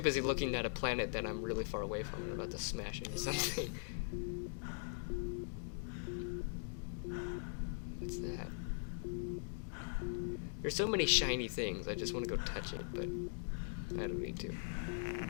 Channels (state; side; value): silent; right; digital silence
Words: busy looking at a planet that I'm really far away from and about to smash into something. What's that? There's so many shiny things, I just want to go touch it, but I don't need to.